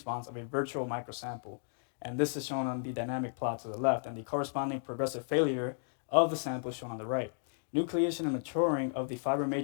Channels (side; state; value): right; silent; digital silence